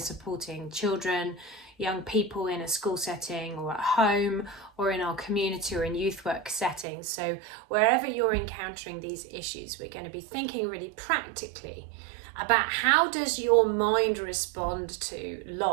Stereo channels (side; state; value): left; drops out; at 6.9 s